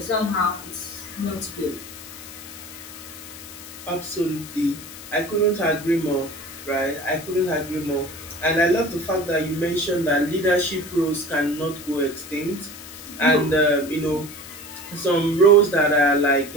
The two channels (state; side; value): noise; left; hiss, 14 dB below the sound